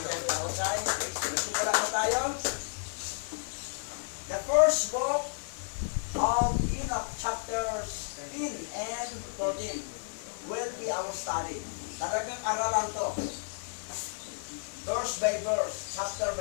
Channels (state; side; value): silent; right; digital silence